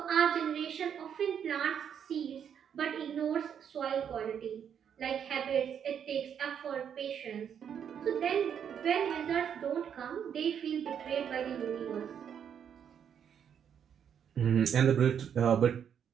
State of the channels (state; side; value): quieter; left; 8.3 dB